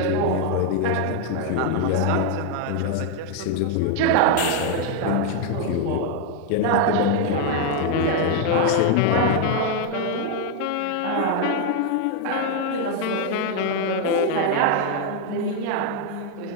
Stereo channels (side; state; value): both; different; correlation 0.01